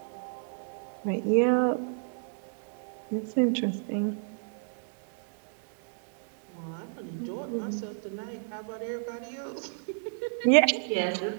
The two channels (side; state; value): left; silent; digital silence